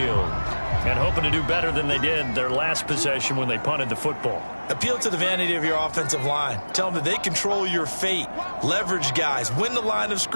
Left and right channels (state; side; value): inverted; both; correlation -1.00